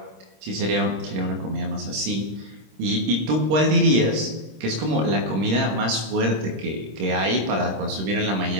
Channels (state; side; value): late; left; 26 ms